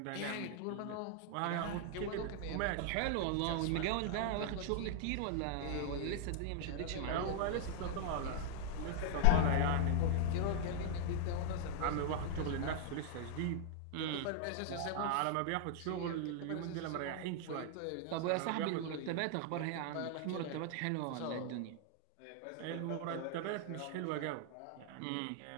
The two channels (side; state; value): both; different; correlation 0.00